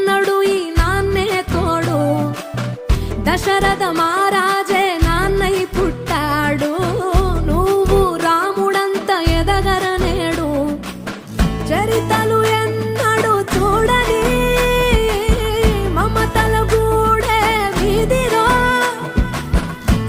ఈ నాన్నే తోడు. దశరథ మహారాజే నాన్నై పుట్టాడు, నువ్వు రాముడంత ఎదగరనేడు. చరితలు ఎన్నడు చూడని మమతల గూడే వీధిరో,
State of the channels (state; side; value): identical; both; correlation 1.00